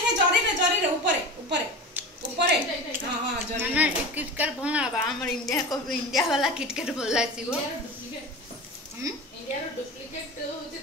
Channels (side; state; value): both; normal; correlation 0.30